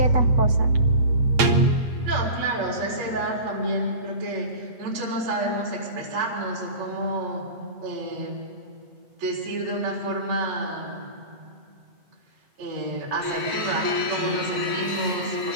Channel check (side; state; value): left; late; 8.4 ms